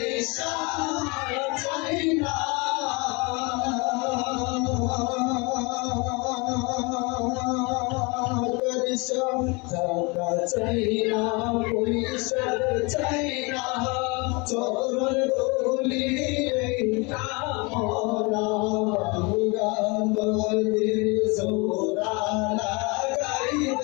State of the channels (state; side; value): quieter; right; 28.4 dB